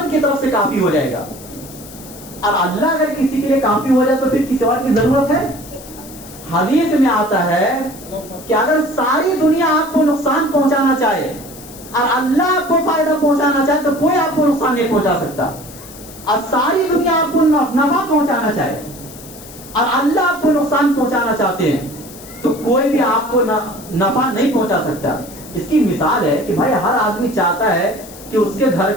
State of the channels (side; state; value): left; noise; hiss, 18 dB below the sound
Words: کی طرف سے کافی ہو جائے گا. اور اللہ اگر کسی کے لیے کافی ہو جائے تو پھر کسی اور کی ضرورت ہے؟ حدیث میں آتا ہے کہ اگر ساری دنیا آپ کو نقصان پہنچانا چاہے اور اللہ آپ کو فائدہ پہنچانا چاہے تو کوئی آپ کو نقصان نہیں پہنچا سکتا. اور ساری دنیا آپ کو نفع پہنچانا چاہے اور اللہ آپ کو نقصان پہنچانا چاہتے ہیں تو کوئی بھی آپ کو نفع نہیں پہنچا سکتا. اس کی مثال ہے کہ بھائی ہر آدمی چاہتا ہے کہ اس کے گھر